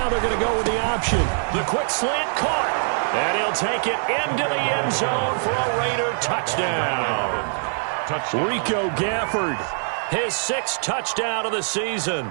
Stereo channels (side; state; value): left; silent; digital silence